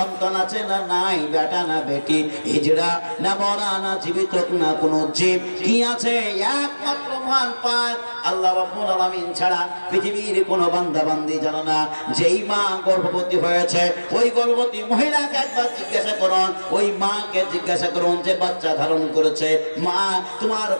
আছে না নাই, বেটা না বেটি, হিজড়া না মরা না জীবিত না কোনো জীব, কি আছে একমাত্র মহান পাক আল্লাহ রাব্বুল আলামিন ছাড়া পৃথিবীর কোনো বান্দা বান্দি জানে না। যেই মা গর্ভবতী হয়েছে ওই গর্ভবতী মহিলাকে একবার জিজ্ঞাসা করুন, ওই মাকে জিজ্ঞাসা করুন যে বাচ্চা ধারণ করেছে, মা তোমার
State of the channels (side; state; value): both; inverted; correlation -1.00